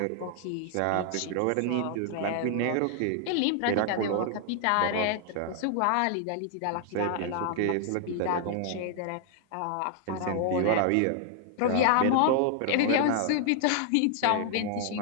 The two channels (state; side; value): different; both; correlation 0.00